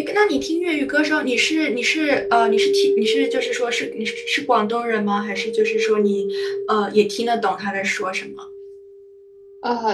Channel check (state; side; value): identical; both; correlation 1.00